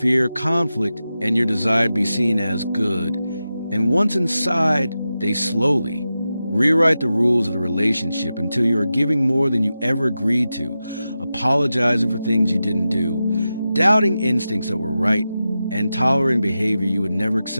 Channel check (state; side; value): inverted; both; correlation -0.92